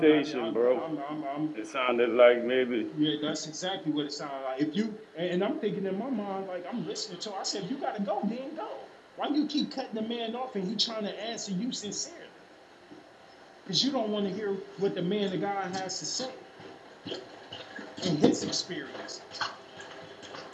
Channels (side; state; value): both; identical; correlation 1.00